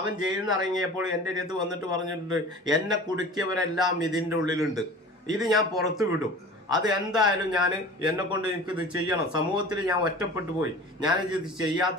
ജയിലിൽ നിന്ന് ഇറങ്ങിയപ്പോൾ എൻ്റെ അടുത്ത് വന്നിട്ട് പറഞ്ഞിട്ടുണ്ട്, എന്നെ കുടുക്കിയവരെല്ലാം ഇതിൻ്റെ ഉള്ളിലുണ്ട്, ഇത് ഞാൻ പുറത്തു വിടും, അത് എന്തായാലും എന്നെ കൊണ്ട് എനിക്കിത് ചെയ്യണം, സമൂഹത്തിൽ ഞാൻ ഒറ്റപ്പെട്ടു പോയി, ഞാനിത്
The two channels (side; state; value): both; normal; correlation 0.40